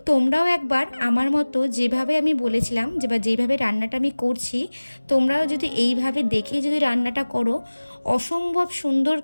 তোমরাও একবার আমার মতো যেভাবে আমি বলেছিলাম বা যেভাবে রান্নাটা আমি করছি, তোমরাও যদি এইভাবে দেখে যদি রান্নাটা করো অসম্ভব সুন্দর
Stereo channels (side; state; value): both; inverted; correlation -1.00